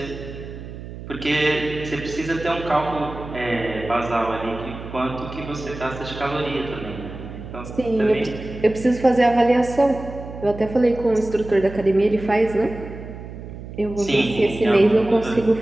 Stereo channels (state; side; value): noise; right; hum, 12 dB below the sound